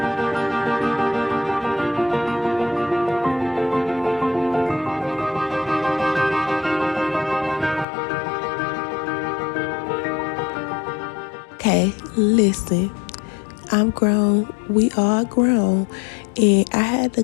Okay, listen. I'm grown. We all grown. And I had to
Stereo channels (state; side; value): drops out; right; at 7.9 s